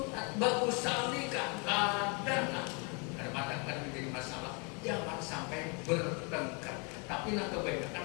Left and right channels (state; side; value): quieter; right; 33.4 dB